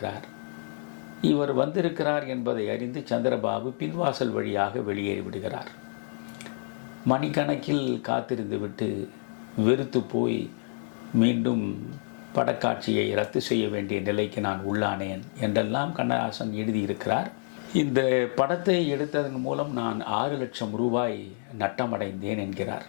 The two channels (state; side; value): silent; right; digital silence